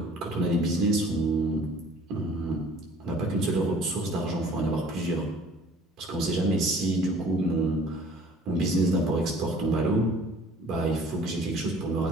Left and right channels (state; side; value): normal; both; correlation 0.51